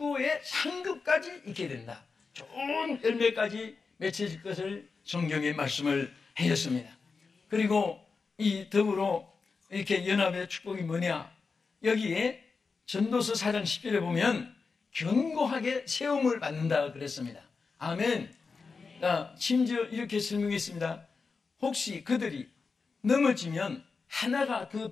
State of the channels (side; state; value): right; quieter; 4.7 dB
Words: 상급까지 있게 된다. 좋은 열매까지 맺혀질 것을 성경에 말씀을 하였습니다. 그리고 이 더불어 이렇게 연합의 축복이 뭐냐? 여기에 전도서 4장 10절에 보면 견고하게 세움을 받는다 그랬습니다. 아멘. 심지어 이렇게 설명했습니다. 혹시 그들이 넘어지면 하나가 그